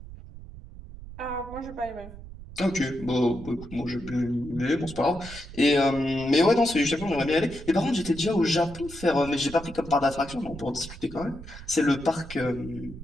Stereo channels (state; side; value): noise; right; rumble, 14 dB below the sound